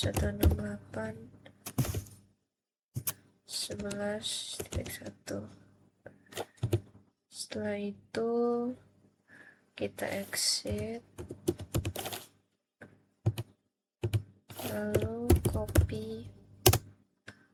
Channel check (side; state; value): both; identical; correlation 1.00